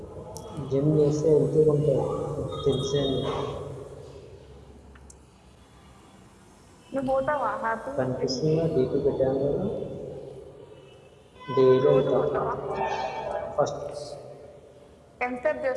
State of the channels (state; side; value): identical; both; correlation 1.00